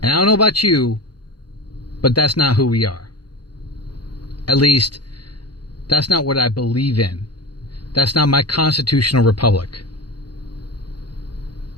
And I don't know about you, but that's not who we are. At least, that's not what I believe in. That's not my constitutional republic.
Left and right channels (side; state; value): right; late; 0.71 ms